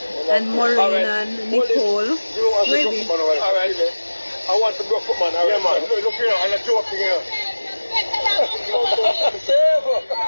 And Maureen and Nicole. Maybe. All right. I want the broke foot, man. All right, man. Look here, and a joke here.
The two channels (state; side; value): inverted; both; correlation -1.00